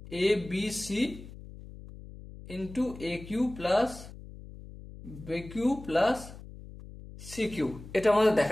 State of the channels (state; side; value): noise; left; hum, 15 dB below the sound